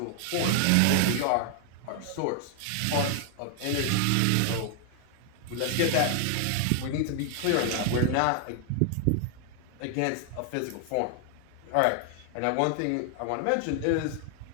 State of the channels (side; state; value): both; different; correlation 0.00